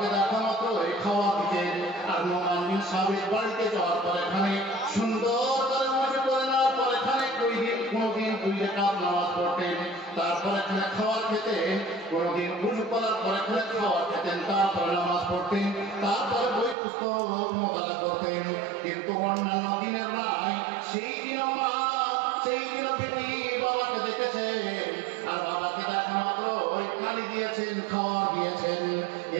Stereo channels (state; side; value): drops out; left; at 16.8 s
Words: দেখা মাত্রই খাওয়া দিতেন। আর নোমান বিন সাবেত বাড়িতে যাওয়ার পর এখানে সুন্দর করে ওযু করে নেওয়ার পর এখানে কোনদিন 2 রাকাত নামাজ পড়তেন, তারপর এখানে খাবার খেতেন, কোনদিন ওযু করার পর এখানে খাবার খেতেন, তারপরে নামাজ পড়তেন, তারপরে বই পুস্তক মোতালা করতেন। কিন্তু অন্যান্য দিনের নাই, সেই দিন বেটি বাবাকে দেখেছেন, আর বাবাকে দেখা মাত্র ওই পানি দিয়েছেন, খাবার দিয়েছেন।